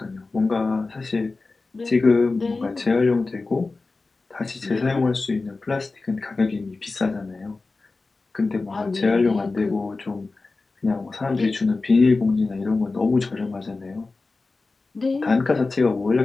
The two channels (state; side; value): quieter; right; 3.7 dB